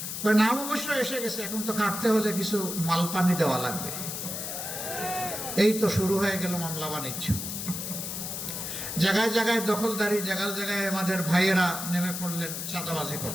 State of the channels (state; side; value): noise; left; hiss, 5 dB below the sound